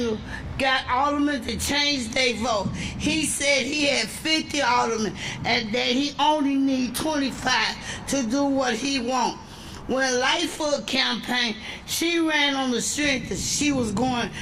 got aldermen to change their vote. He said he had 50 aldermen and that he only need 25 to do what he wants. When Lightfoot campaigned, she ran on the strength that she was going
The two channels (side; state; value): both; identical; correlation 1.00